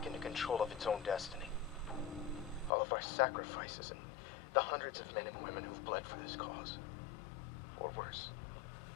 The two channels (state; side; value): drops out; right; at 2.7 s